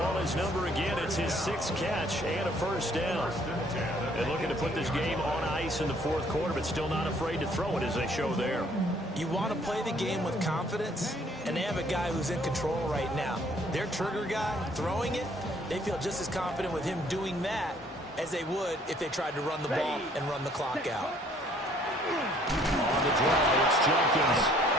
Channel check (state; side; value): normal; both; correlation 0.61